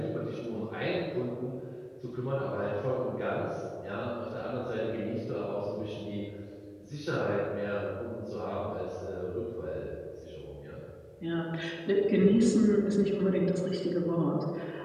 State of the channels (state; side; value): identical; both; correlation 1.00